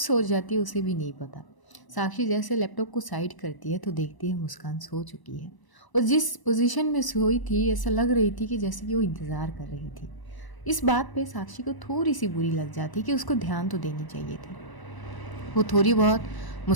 जाती है उसे भी नहीं पता। साक्षी जैसे लैपटॉप को साइड करती है तो देखती है मुस्कान सो चुकी है और जिस पोजीशन में सोई थी ऐसा लग रही थी कि जैसे कि वो इंतज़ार कर रही थी। इस बात पे साक्षी को थोड़ी सी बुरी लग जाती कि उसको ध्यान तो देनी चाहिए थी। वो थोड़ी बहुत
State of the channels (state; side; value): late; right; 1.0 ms